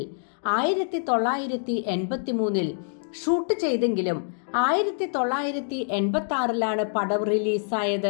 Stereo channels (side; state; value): right; silent; digital silence